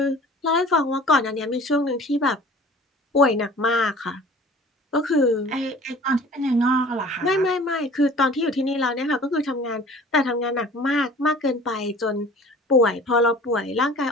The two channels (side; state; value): both; normal; correlation 0.46